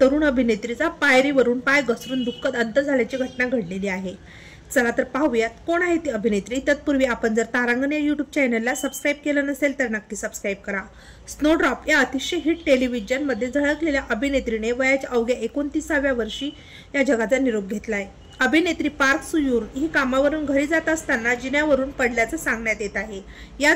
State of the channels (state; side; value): identical; both; correlation 1.00